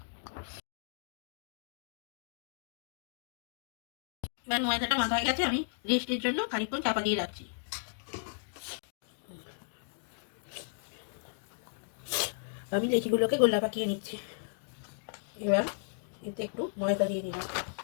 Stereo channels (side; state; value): right; silent; digital silence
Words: এবার ময়দাটা মাখা হয়ে গেছে, আমি রেস্টের জন্য খানিকক্ষণ চাপা দিয়ে রাখছি। আমি লেচিগুলোকে গোলা পাকিয়ে নিচ্ছি। এবার এতে একটু ময়দা দিয়ে দিলাম,